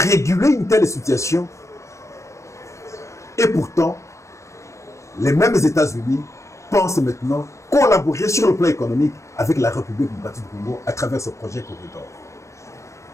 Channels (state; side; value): late; right; 0.14 ms